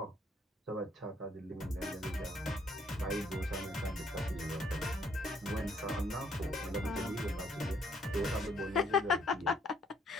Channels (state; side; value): normal; both; correlation 0.67